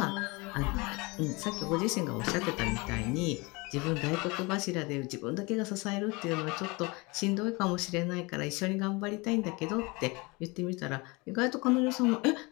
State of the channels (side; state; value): right; quieter; 26.2 dB